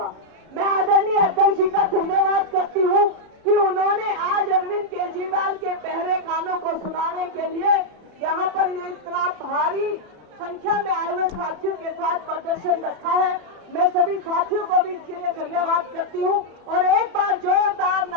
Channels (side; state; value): left; late; 33 ms